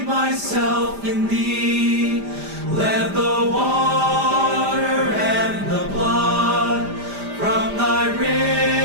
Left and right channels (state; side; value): late; left; 5.0 ms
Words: myself in thee. Let the water and the blood from thy